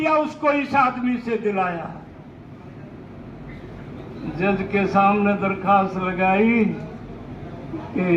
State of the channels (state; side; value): identical; both; correlation 1.00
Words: उसको इस आदमी से दिलाया। जज के सामने दरखास्त लगाई